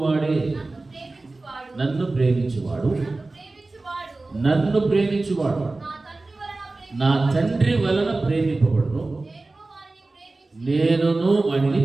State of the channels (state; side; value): quieter; left; 3.2 dB